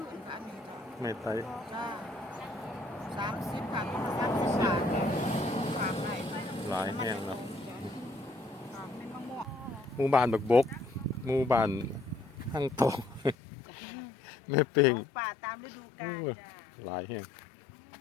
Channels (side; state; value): right; drops out; at 13.4 s